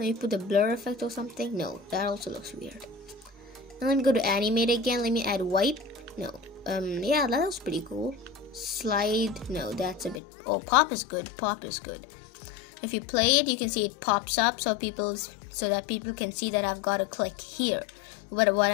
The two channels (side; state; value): right; drops out; at 10.2 s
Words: put the blur effect or something. No, that also looks weird. And let me go to animate again. Let me add wipe. No. Yeah, that looks pretty cool. Slide. No, that's a bit. Oh, pop is good. Pop is good. If you play it, you can see it pops up so that people can see that I've got to click here. What